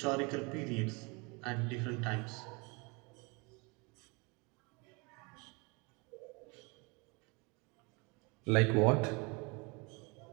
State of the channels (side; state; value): left; quieter; 29.1 dB